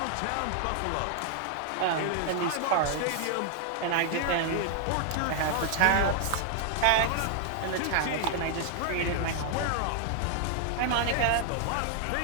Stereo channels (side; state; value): both; different; correlation 0.00